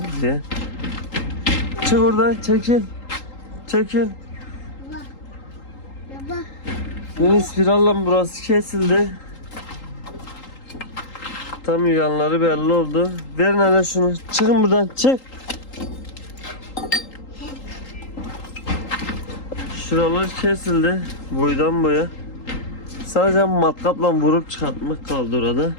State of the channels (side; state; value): right; late; 3.8 ms